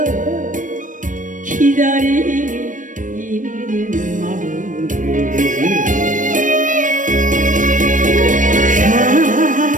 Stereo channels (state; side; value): late; left; 0.38 ms